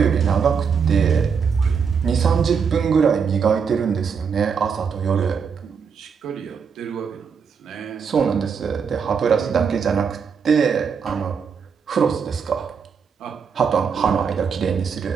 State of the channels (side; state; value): left; quieter; 6.3 dB